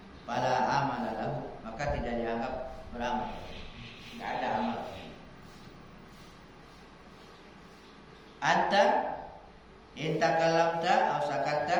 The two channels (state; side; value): identical; both; correlation 1.00